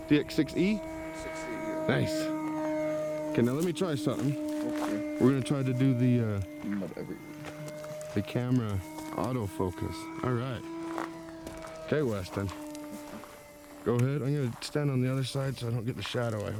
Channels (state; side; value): identical; both; correlation 1.00